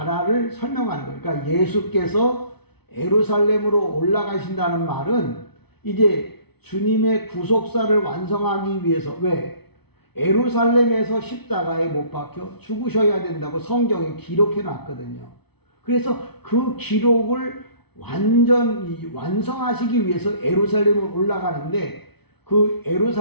설명하는 거예요. 그러니까 예수께서 예루살렘으로 올라가신다는 말은 이제 주님의 구속사를 완성하기 위해서 왜? 예루살렘에서 십자가에 못 박혀 죽으셔야 된다고 성경에 기록해 놨거든요. 그래서 그 기록을 완전히 완성하시기 위해서 예루살렘으로 올라가는데 그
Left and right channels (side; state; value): right; late; 0.98 ms